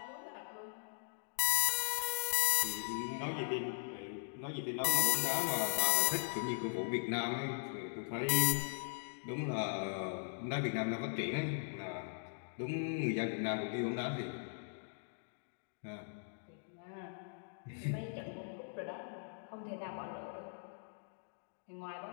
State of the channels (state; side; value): silent; right; digital silence